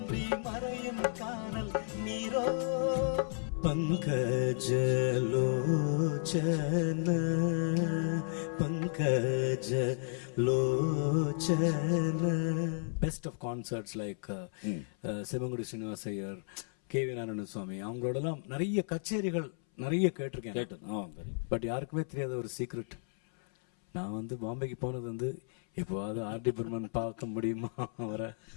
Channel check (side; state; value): right; silent; 56 dB below the other